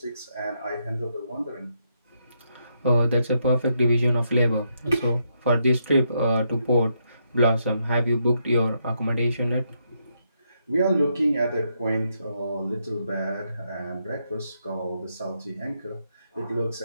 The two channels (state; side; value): inverted; both; correlation -0.79